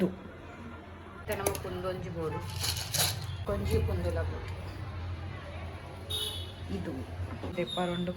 ಇತ್ತೆ ನಮಕ್ ಕುಂದೊಂಜಿ ಬೋಡು ಕೊಂಜಿ ಕುಂದುಲ ಬೋಡು ಇದು ದೆಪ್ಪರೋಂಡು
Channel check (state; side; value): identical; both; correlation 1.00